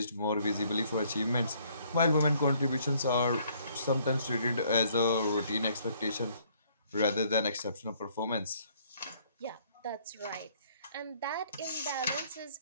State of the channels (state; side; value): inverted; both; correlation -0.64